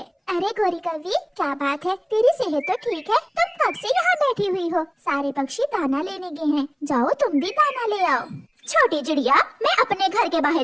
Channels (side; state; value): both; identical; correlation 1.00